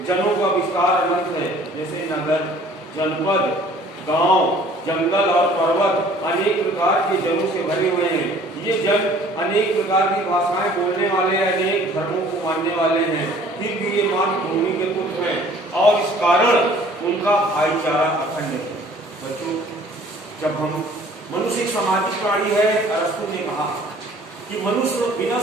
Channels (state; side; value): normal; both; correlation 0.53